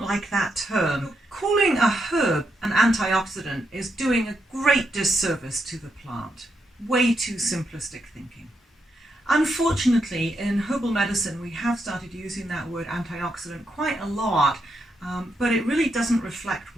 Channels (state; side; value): normal; both; correlation 0.82